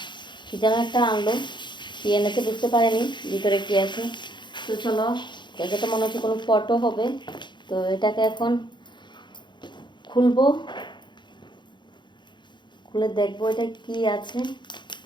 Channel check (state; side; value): late; right; 0.22 ms